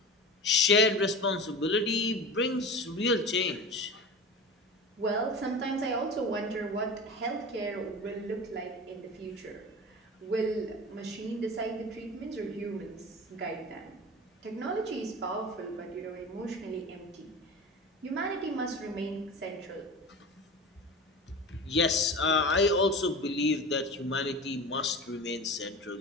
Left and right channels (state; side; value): normal; both; correlation 0.32